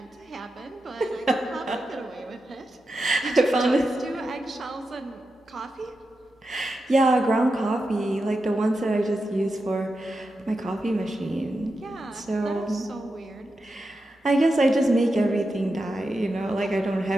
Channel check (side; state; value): both; normal; correlation 0.89